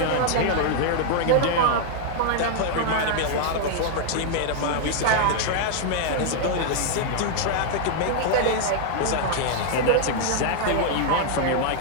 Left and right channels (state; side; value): different; both; correlation 0.00